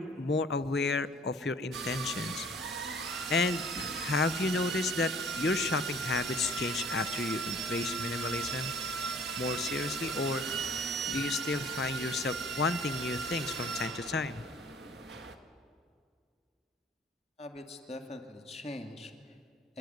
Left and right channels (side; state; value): both; normal; correlation 0.51